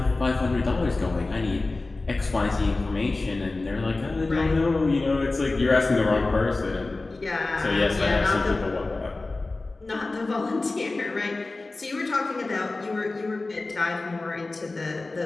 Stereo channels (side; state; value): right; quieter; 3.3 dB